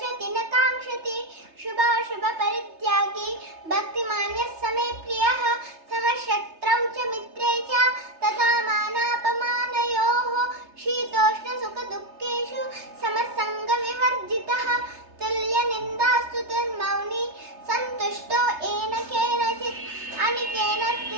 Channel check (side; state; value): left; late; 3.3 ms